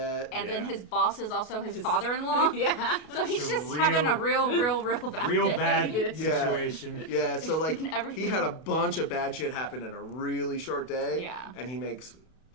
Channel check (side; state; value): right; late; 33 ms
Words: And then Yeah. his boss is also his father-in-law. Yeah. So he's It's a just having a real bad Real day. bad Yeah. situation. Yeah, so like Everything. he had a bunch of bad shit happen in a really short day. Yeah. And he makes